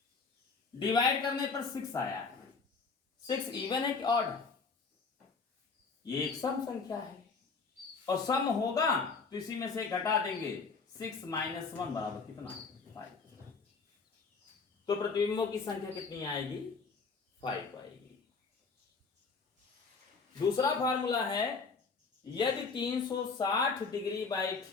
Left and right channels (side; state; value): right; quieter; 4.7 dB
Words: डिवाइड करने पर 6 आया है। 6 इवन है कि ऑड है? ये एक सम संख्या है, और सम होगा तो इसी में से घटा देंगे। 6 - 1 बराबर कितना? 5। तो प्रतिबिंबों की संख्या कितनी आएगी? 5 आएगी। दूसरा फार्मूला है, यदि 360 डिग्री बाई